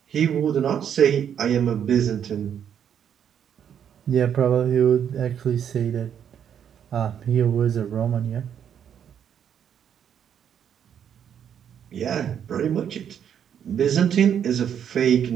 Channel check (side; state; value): left; quieter; 8.7 dB